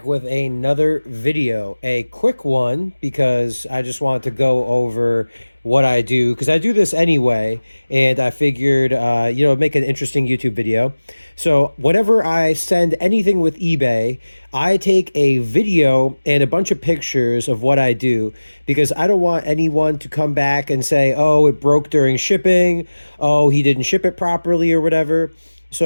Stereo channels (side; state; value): both; inverted; correlation -1.00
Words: with another video. A quick one because I just wanted to go over what I do because I do this anyway, and I figured, make an interesting YouTube video. So, whenever I send anything with eBay, I take a video and a bunch of pictures of what I do because I don't want anyone to come back and say, oh, it broke during shipping, oh, he didn't ship it properly, or whatever.